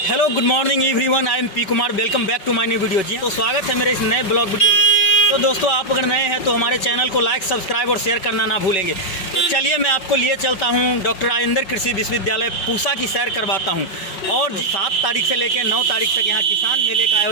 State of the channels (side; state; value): right; late; 5.2 ms